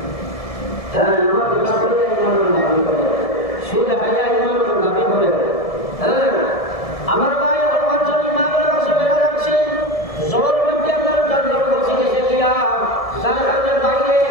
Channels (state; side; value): late; right; 1.7 ms